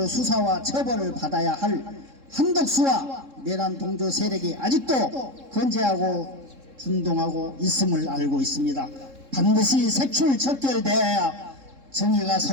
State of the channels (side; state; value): left; late; 3.7 ms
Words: 수사와 처벌을 받아야 할 한덕수와 내란 동조 세력이 아직도 건재하고 준동하고 있음을 알고 있습니다. 반드시 색출척결되어야 정의가